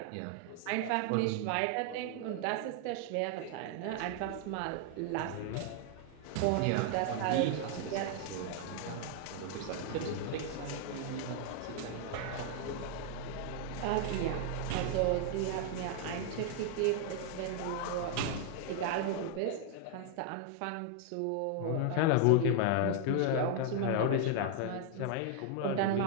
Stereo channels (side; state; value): both; different; correlation 0.00